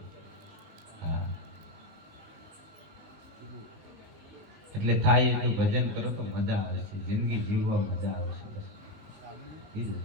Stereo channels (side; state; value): left; late; 19 ms